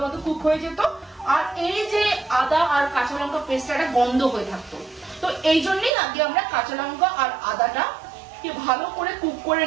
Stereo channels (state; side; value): drops out; left; at 5.9 s